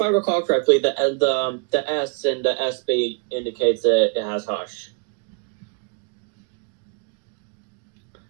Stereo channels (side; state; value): left; quieter; 36.0 dB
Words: I recall correctly, the S in the SB indicates that it has hush.